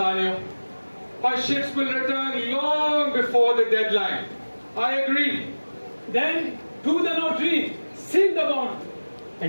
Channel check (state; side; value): inverted; both; correlation -1.00